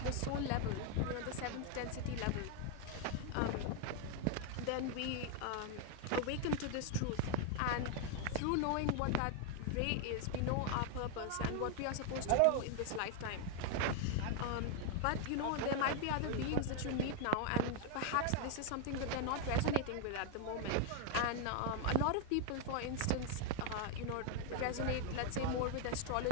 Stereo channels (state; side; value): different; both; correlation 0.01